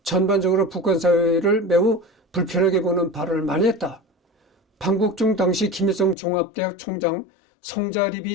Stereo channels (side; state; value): right; drops out; at 6.2 s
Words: 전반적으로 북한 사회를 매우 불편하게 보는 발언을 많이 했다. 방북 중 당시 김일성 종합대학 총장